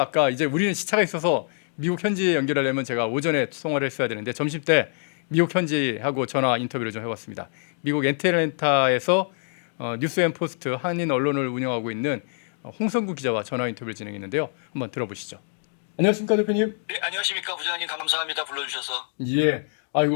아까 이제 우리는 시차가 있어서 미국 현지에 연결하려면 제가 오전에 통화를 했어야 되는데 점심 때 미국 현지하고 전화 인터뷰를 좀 해봤습니다. 미국 애틀랜타에서 뉴스앤포스트 한인 언론을 운영하고 있는 홍성구 기자와 전화 인터뷰를 진행했는데요. 한번 들어보시죠. 안녕하십니까 대표님. 네, 안녕하십니까 부장님. 감사합니다. 불러주셔서. 예.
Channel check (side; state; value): right; silent; digital silence